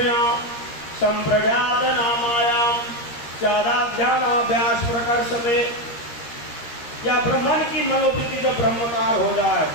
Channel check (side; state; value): right; late; 13 ms